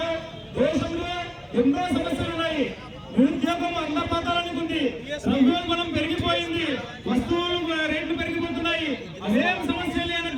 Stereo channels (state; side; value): identical; both; correlation 1.00